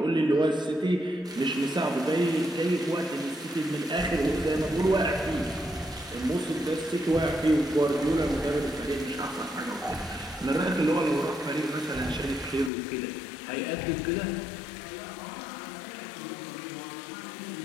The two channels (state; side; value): drops out; right; at 12.7 s